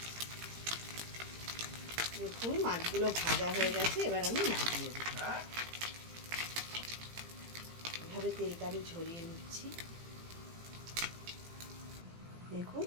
দেখুন মাছগুলো ভাজা হয়ে গেছে, এবার আমি নামিয়ে দেব। এভাবে তেলটা আমি ঝরিয়ে নিচ্ছি। দেখুন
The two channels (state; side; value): late; left; 18 ms